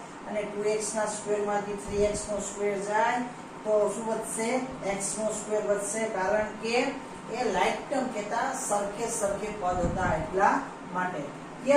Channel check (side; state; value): both; identical; correlation 1.00